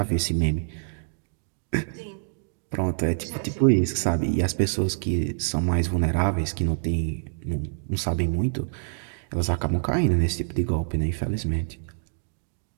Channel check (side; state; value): left; silent; digital silence